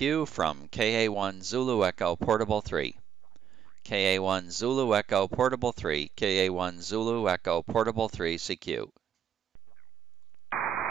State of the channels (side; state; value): left; quieter; 8.9 dB